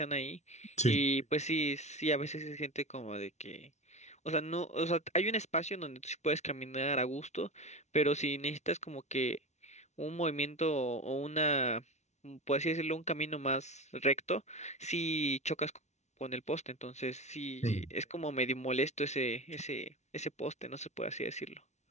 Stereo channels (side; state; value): right; late; 0.32 ms